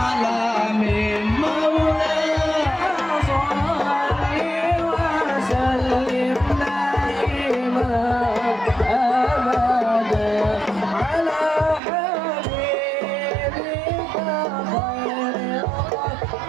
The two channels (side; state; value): left; drops out; at 11.8 s